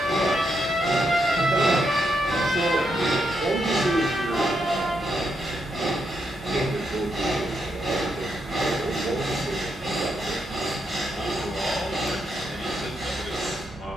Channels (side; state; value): both; normal; correlation 0.80